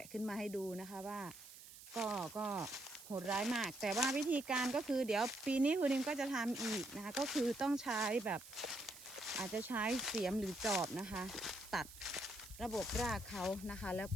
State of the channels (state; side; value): noise; right; hiss, 16 dB below the sound